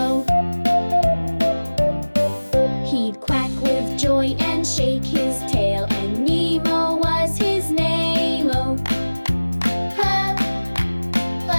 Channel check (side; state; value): both; inverted; correlation -1.00